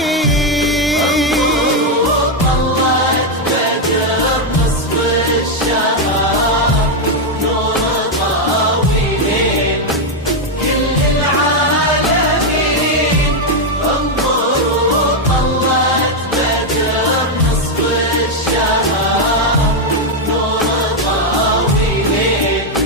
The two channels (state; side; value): normal; both; correlation 0.02